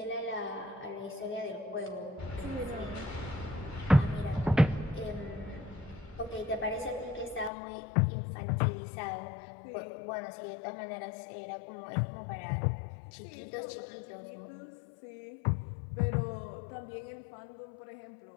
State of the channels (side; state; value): right; drops out; at 7.5 s